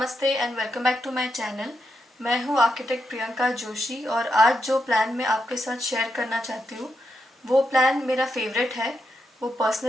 and welcome back to my channel. मैं हूँ आर्किटेक्ट प्रियंका जोशी और आज जो प्लान मैं आपके साथ शेयर करना चाहती हूँ वो प्लान मेरा फेवरेट है। वो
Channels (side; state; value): both; normal; correlation 0.83